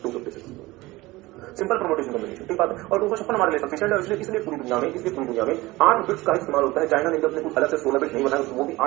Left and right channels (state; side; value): quieter; left; 19.9 dB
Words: 256। सिंपल परम्यूटेशन कॉम्बिनेशन, ठीक बात है। और 256 हमारे लिए सफिशिएंट है। इसलिए पूरी दुनिया में 8 बिट्स का इस्तेमाल होता है। चाइना ने अपने कुछ अलग से 16 बिट नहीं बनाया, वो भी